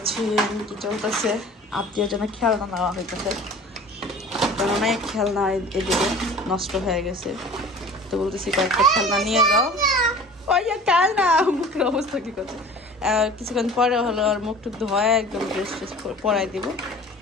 কি চলতেছে, আত্মীয় জন্য খেলনা নেওয়া হইতেছে, কারণ অনেক খেলনা এদিকে নষ্ট হয়ে গেছে। তো বলতেছি কয়েকটা খেলনা নিয়ে যাও। ওই খেলনা মুখের অবস্থা কি করছে, কিছুক্ষণ পরে হলো আর মুখ টুক ধোয়া একদম ড্রেস ট্রেস পরাই দিব।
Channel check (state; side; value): normal; both; correlation 0.43